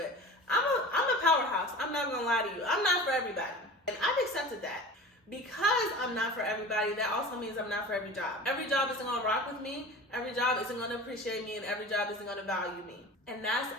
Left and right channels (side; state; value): both; normal; correlation 0.36